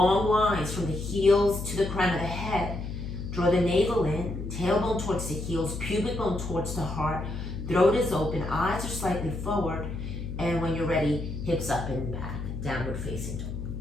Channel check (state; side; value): noise; left; hum, 6 dB below the sound